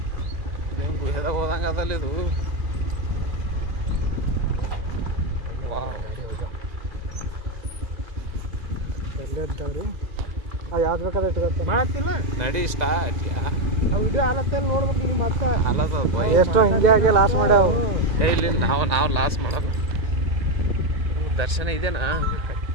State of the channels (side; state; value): left; late; 1.7 ms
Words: ಇದೇನು ಗುಹೆದಾಗ ಹೋದಂಗೆ ಅದಲ್ಲ ಇದು. ವಾವ್, ಎಲ್ಲೇ ಇದ್ದಾವ್ರಿ. ಯಾವ್ದು ಬೇಕಾದ್ರೆ ಇಟ್ಕೊತ್ತೆ ಮಾತಿಲ್ಲ. ನಡಿ ಸ್ಟಾರ್ಟ್ ಯಾ. ಆ ವಿಡಿಯೋ ಆಲತ್ತಲ್ಲಿ ನೋಡ್ಬೇಕು ನೀವು ಮತ್ತೆ. ಅಲ್ಲದ ಎಷ್ಟೋ ಹಿಂಗೆ ಆಗಿ ಲಾಸ್ ಮಾಡ್ಯಾವ. ಇಲ್ಲಿ ನಾವು ಲಾಸ್ ಮಾಡಲ್ಲ. ದರ್ಶನ ಇದೆನಾ?